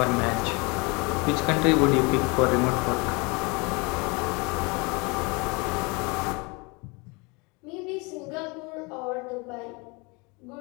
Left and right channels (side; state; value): right; quieter; 28.5 dB